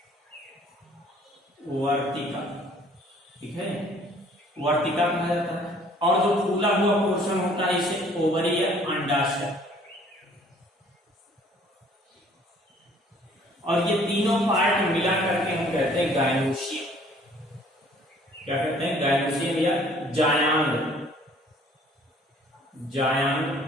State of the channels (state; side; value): normal; both; correlation 0.56